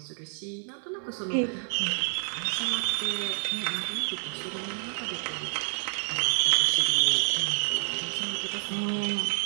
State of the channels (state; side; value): silent; left; 59 dB below the other